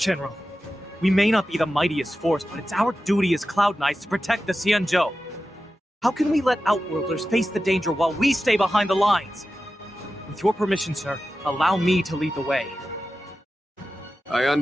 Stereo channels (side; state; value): both; normal; correlation 0.93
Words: We may not be the mightiest force, but it's our duty as Cloud Knights to protect the Xianzhou. How can we let Outworlders face the danger while we stay behind the lines? With your permission, sir, allow me to lead the way. I